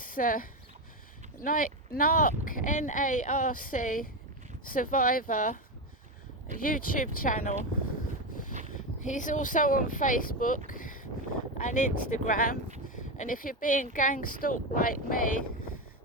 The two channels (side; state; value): both; normal; correlation 0.13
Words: NARC, N-A-R-C, Survivor YouTube channel. He's also on Facebook and Instagram, and if you're being gang stalked like me